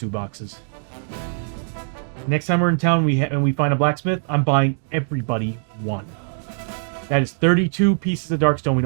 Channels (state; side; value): silent; left; 61 dB below the other